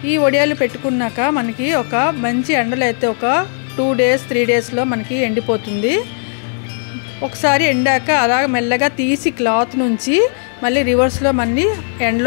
ఈ వడియాలు పెట్టుకున్నాక మనకి ఒక మంచి ఎండలో అయితే ఒక 2 days 3 daysలో మనకి ఎండిపోతుంది। ఒకసారి ఎండాక అలా మెల్లగా తీసి క్లాత్ నుంచి మళ్ళీ రివర్స్లో మళ్ళీ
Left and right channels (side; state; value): right; silent; digital silence